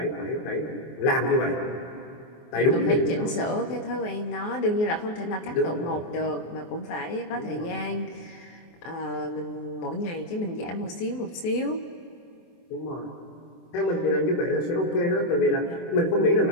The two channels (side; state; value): right; late; 24 ms